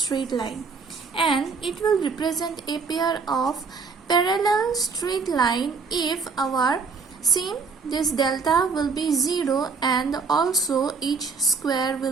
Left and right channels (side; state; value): left; quieter; 4.9 dB